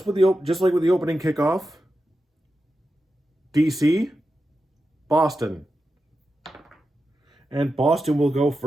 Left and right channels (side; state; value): both; normal; correlation 0.90